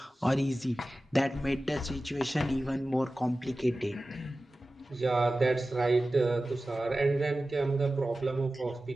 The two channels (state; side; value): normal; both; correlation 0.95